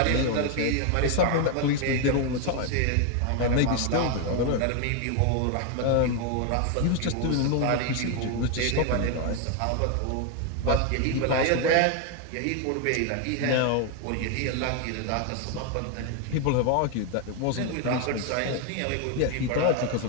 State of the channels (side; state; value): both; different; correlation 0.01